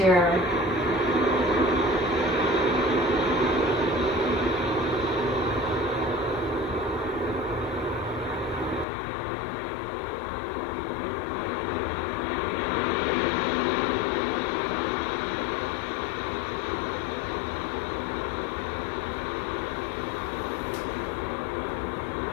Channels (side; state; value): right; drops out; at 8.8 s